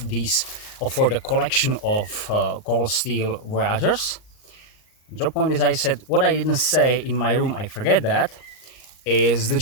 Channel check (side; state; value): right; late; 38 ms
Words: these, for the collection of Cold Steel Voyagers. Drop point, as I said, what I didn't say in my room, I forget that, is the